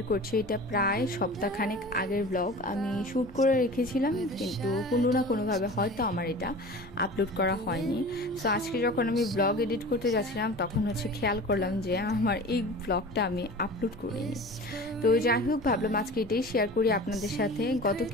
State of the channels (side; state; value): left; noise; hum, 24 dB below the sound